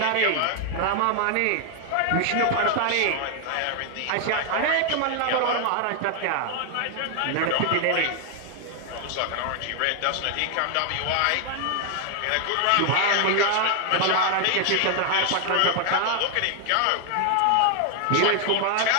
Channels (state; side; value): different; both; correlation 0.00